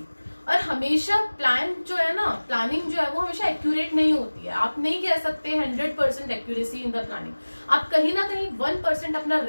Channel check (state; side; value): inverted; both; correlation -1.00